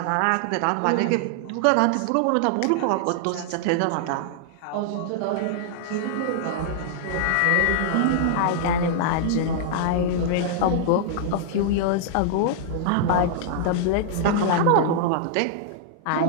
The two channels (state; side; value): different; both; correlation -0.01